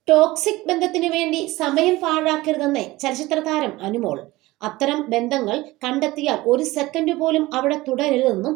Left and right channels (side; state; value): left; quieter; 19.3 dB